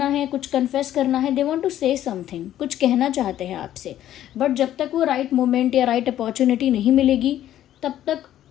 है, कुछ कन्फेस करना है। They want to say something, कुछ कहना चाहते हैं आपसे, बट जब तक वो राइट मोमेंट या राइट अपॉर्चुनिटी नहीं मिलेगी तब तक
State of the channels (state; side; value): quieter; right; 12.2 dB